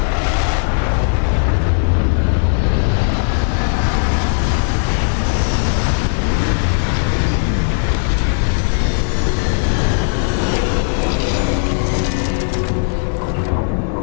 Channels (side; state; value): right; silent; digital silence